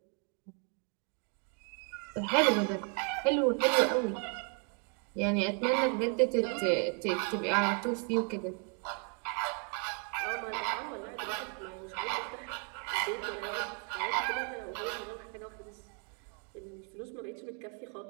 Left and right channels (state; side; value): quieter; left; 37.8 dB